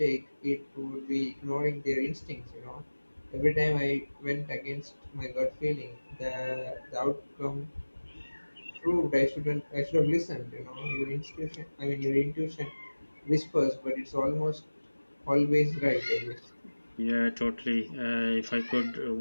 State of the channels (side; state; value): both; inverted; correlation -1.00